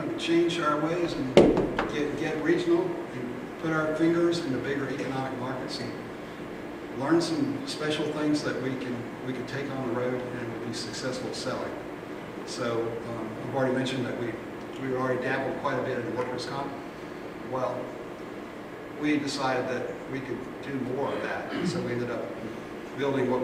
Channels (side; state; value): both; identical; correlation 1.00